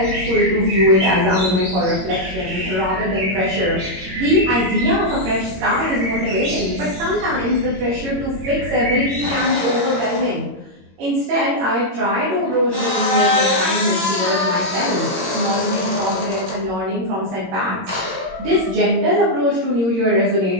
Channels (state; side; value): late; left; 21 ms